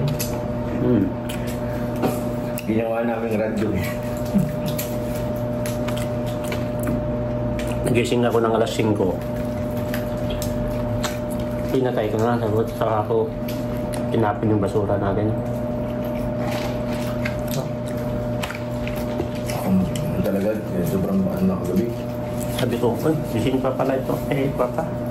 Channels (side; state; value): both; identical; correlation 1.00